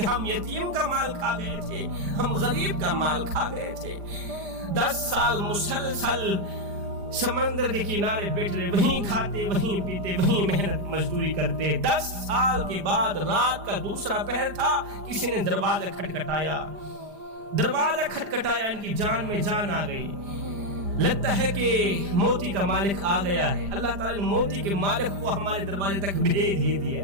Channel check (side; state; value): left; late; 5.0 ms